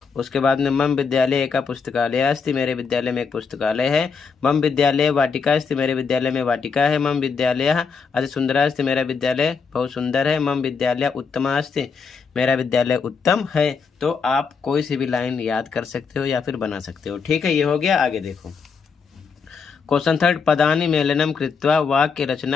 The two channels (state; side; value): quieter; right; 5.5 dB